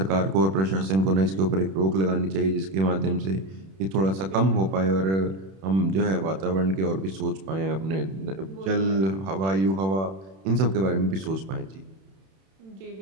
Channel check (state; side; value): late; left; 31 ms